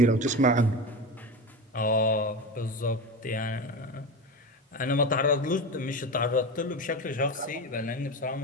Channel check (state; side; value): normal; both; correlation 0.23